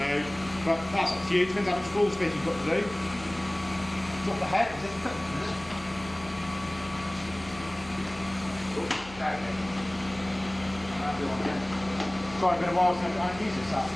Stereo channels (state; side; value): noise; left; hum, 18 dB below the sound